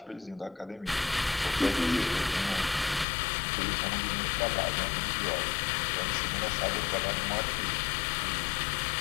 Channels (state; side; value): drops out; right; at 3.1 s